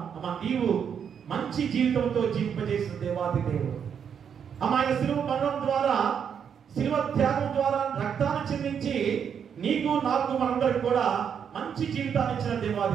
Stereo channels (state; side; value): quieter; left; 7.6 dB